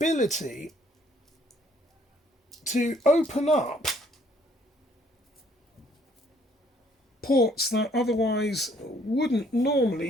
to open up ports that otherwise wouldn't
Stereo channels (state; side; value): normal; both; correlation 0.63